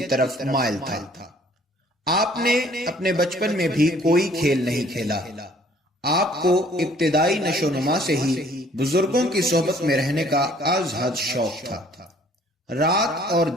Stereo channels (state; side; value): normal; both; correlation 0.58